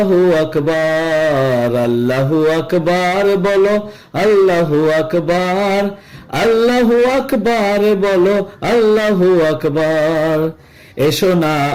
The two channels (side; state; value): both; identical; correlation 1.00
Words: আকবার, আল্লাহু আকবার বলো, আল্লাহু আকবার, আল্লাহু আকবার বলো, আল্লাহু আকবার। এসো না